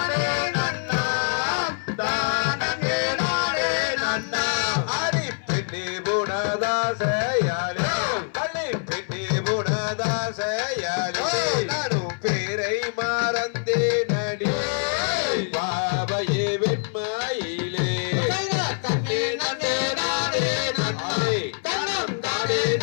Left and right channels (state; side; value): silent; right; 62 dB below the other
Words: நன்னா தானே நானே நன்னா அரி பெண்ணே புனதாசையாலே அலி பெண்ணே புனதாசையாலே நானும் பேரை மறந்தே நடி பாவையே வெண்மையிலே தன்னே நன்னே நானே நன்னே தனம் தானே